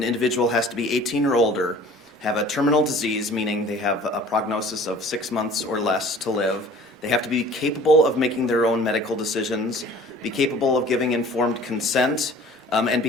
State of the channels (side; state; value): both; normal; correlation 0.48